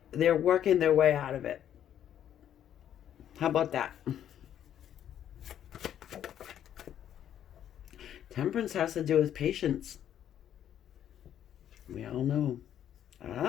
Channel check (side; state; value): right; quieter; 10.3 dB